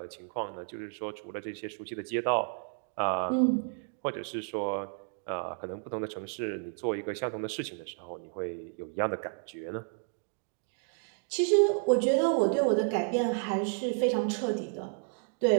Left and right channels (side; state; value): left; silent; 57 dB below the other